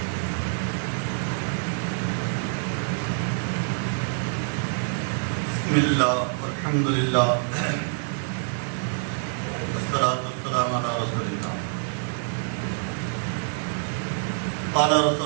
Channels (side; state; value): left; silent; digital silence